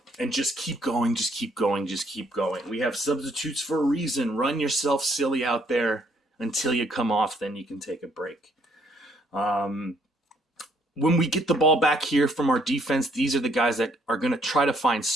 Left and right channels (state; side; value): normal; both; correlation 0.67